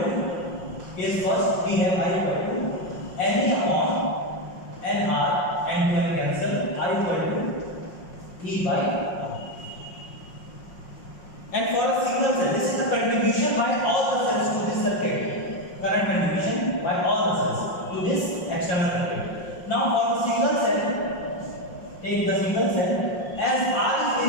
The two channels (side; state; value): right; late; 5.5 ms